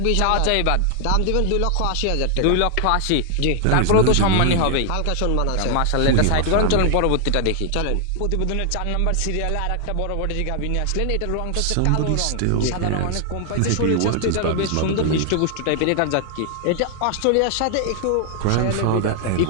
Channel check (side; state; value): both; different; correlation 0.00